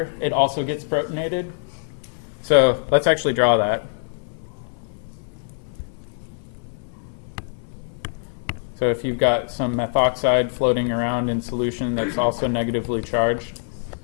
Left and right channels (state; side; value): silent; right; 58 dB below the other